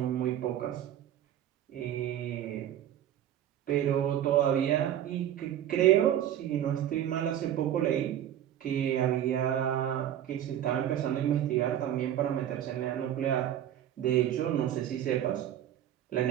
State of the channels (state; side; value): quieter; left; 11.1 dB